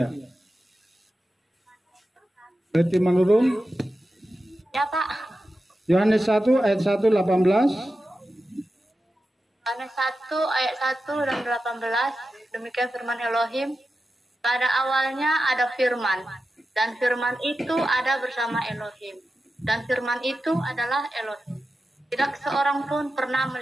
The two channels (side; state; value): both; normal; correlation 0.92